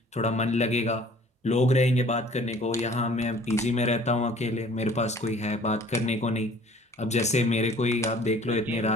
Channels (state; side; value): normal; both; correlation 0.52